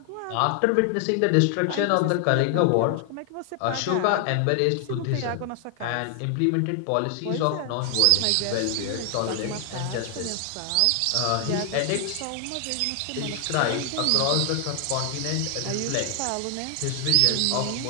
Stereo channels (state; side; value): different; both; correlation 0.00